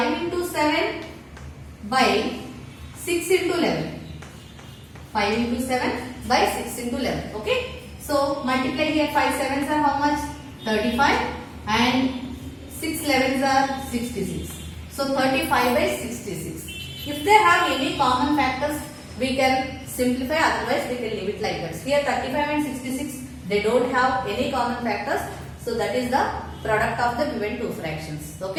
into 7 by 6 into 11. 5 into 7 by 6 into 11. Okay. So multiply here, 5 sevens are how much? 35 and 6 11s are 66. So 35 by 66. If they have any common factors, we can simplify, otherwise we can leave it like that. Here 35 and 66, they don't have any common factors. So that is the product of the given two fractions.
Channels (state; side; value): identical; both; correlation 1.00